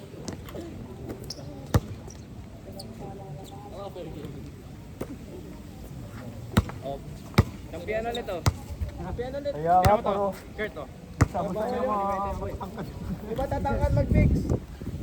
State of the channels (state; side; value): identical; both; correlation 1.00